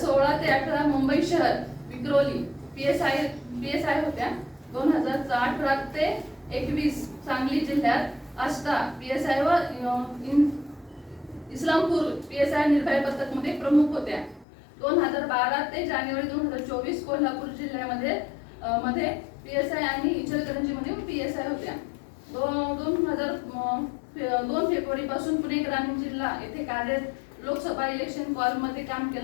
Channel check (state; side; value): drops out; right; at 14.5 s